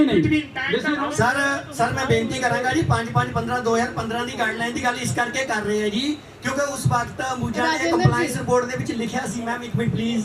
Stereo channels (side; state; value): both; identical; correlation 1.00